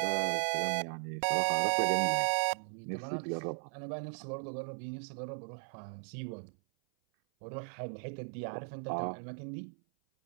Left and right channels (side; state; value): left; silent; 53 dB below the other